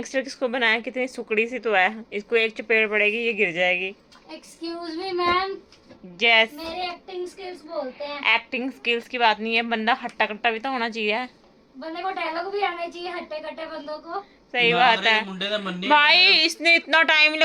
किसको बनाया? कितनी सुकड़ी सी तो है, इसको एक चपेट पड़ेगी ये गिर जाएगी। एक्सक्यूज मी मैम, जैस मेरे एक्टिंग स्किल्स बोलते हैं। एक्टिंग स्किल्स की बात नहीं है, बंदा हट्टा कट्टा भी तो होना चाहिए। बंदे को डायलॉग भी आना चाहिए, हट्टे कट्टे बंदों को। सही बात है मुंडे का मन नहीं भाई, इसने इतना टाइम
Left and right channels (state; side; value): identical; both; correlation 1.00